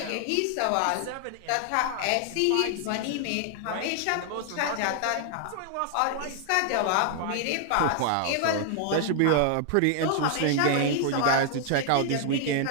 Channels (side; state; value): both; different; correlation 0.00